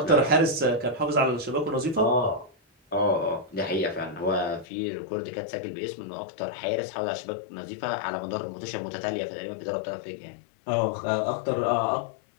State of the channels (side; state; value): right; drops out; at 4.7 s